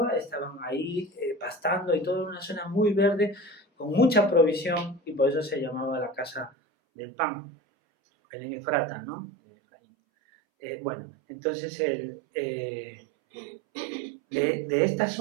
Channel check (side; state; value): left; drops out; at 6.5 s